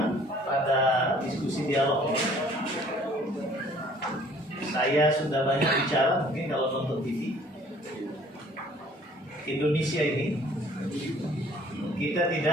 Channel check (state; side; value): normal; both; correlation 0.55